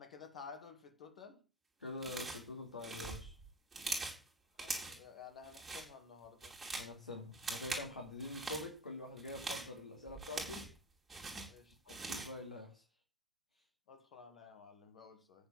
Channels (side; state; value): both; normal; correlation 0.34